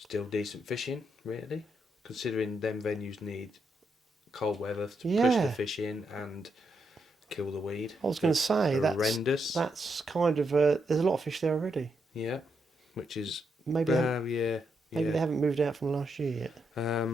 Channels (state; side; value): normal; both; correlation 0.81